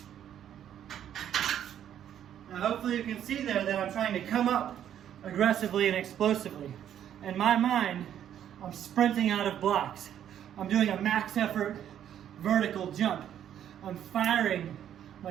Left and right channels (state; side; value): quieter; left; 10.2 dB